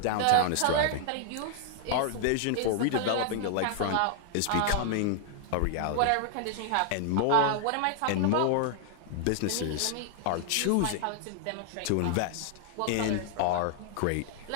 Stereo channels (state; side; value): different; both; correlation 0.00